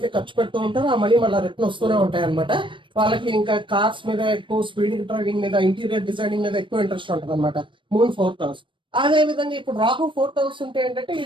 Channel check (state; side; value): late; left; 0.24 ms